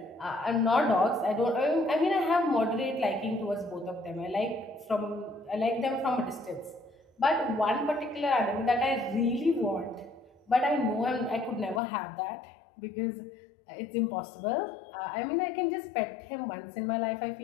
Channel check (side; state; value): right; drops out; at 11.8 s